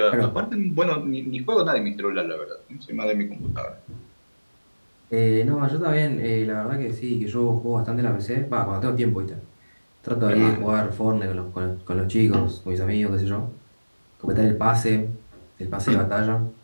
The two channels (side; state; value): both; inverted; correlation -1.00